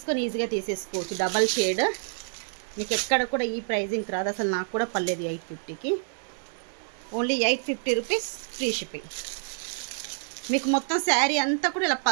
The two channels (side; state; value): left; silent; digital silence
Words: ఈజీగా తీసేసుకోవచ్చు. డబల్ షేడ్ మీకు ఎక్కడ కూడా ఈ ప్రైజింగ్ రాదు. అసలు నాకు కూడా పర్లేదు 850కి. Only 850 rupees free shipping. మీకు మొత్తం శారీ అంతా కూడా ఇలా